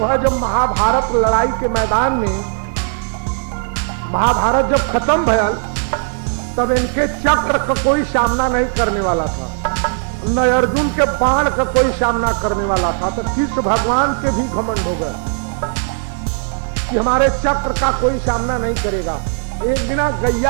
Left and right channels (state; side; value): silent; left; digital silence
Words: जब महाभारत लड़ाई के मैदान में महाभारत जब खत्म भयल तब इनके चक्र का कोई सामना नहीं करने वाला था, न अर्जुन के बाण का कोई सामना करने वाला था। तो कृष्ण भगवान के भी घमंड हो गए कि हमारे चक्र का कोई सामना नहीं करेगा। एक दिन